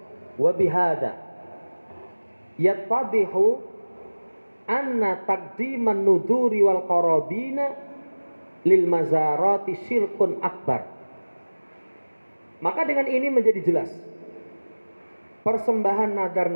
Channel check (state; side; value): inverted; both; correlation -1.00